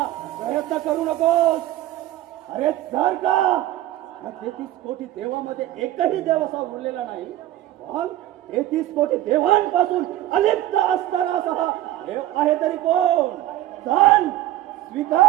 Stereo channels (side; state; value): left; quieter; 14.5 dB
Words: प्रयत्न करू नकोस. अरे जर का 33 कोटी देवामध्ये एकही देव असा उरलेला नाही, मग 33 कोटी देवांपासून अलिप्त असणारा असा देव आहे तरी कोण? सांग,